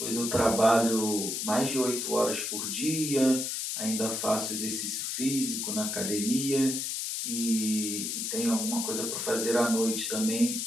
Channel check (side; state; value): left; noise; hiss, 2 dB below the sound